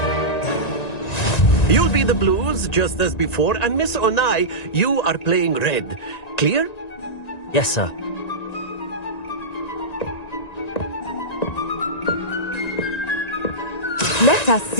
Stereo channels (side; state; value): right; late; 1.9 ms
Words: You'll be the blues, just as before, and Miss Onai, you are playing red. Clear? Yes, sir. Let us